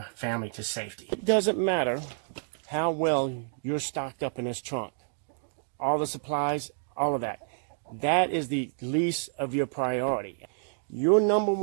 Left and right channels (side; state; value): left; silent; digital silence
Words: family to safety. It doesn't matter how well you're stocked up in this trunk. All the supplies, all of that. That is the least of your priority. Your number